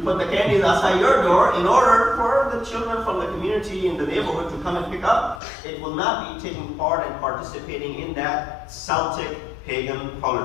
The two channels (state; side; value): drops out; right; at 5.4 s